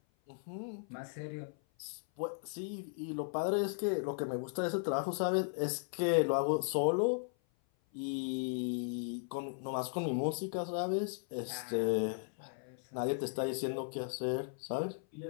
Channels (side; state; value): right; silent; 53 dB below the other